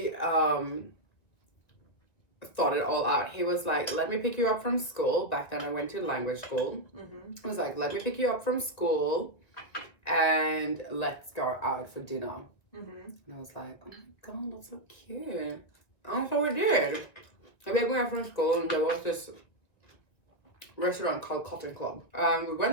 thought it all out. He was like, let me pick you up from school. Back then I went to language school. He was like, let me pick you up from school and let's go out for dinner. And I was like, oh my God, that's so cute. And so we did. I picked me up from school and there was this restaurant called Cotton Club. We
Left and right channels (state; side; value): late; right; 1.9 ms